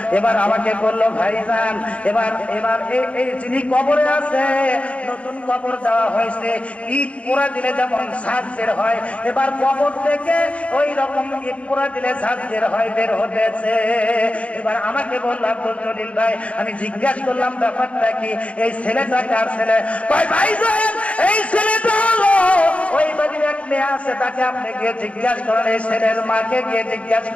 এবার আমাকে বললো, ভাইজান এবার এই যিনি কবরে আছে, নতুন কবর দেওয়া হয়েছে, ইট পোড়া দিলে যেমন ঝাঁজ বের হয়, এবার কবর থেকে ওই রকম ইট পোড়া দিলে ঝাঁজ বের হয়, বের হতেছে। এবার আমাকে বললো, আব্দুল জলিল ভাই, আমি জিজ্ঞাসা করলাম ব্যাপারটা কি, এই ছেলেটা কার ছেলে? ভাইজান এই ছেলেটা হলো ওই বাড়ির এক মেয়ে আছে, তাকে আপনি গিয়ে জিজ্ঞাসা করেন, এই ছেলের মাকে গিয়ে জিজ্ঞাসা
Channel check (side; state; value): right; late; 0.063 ms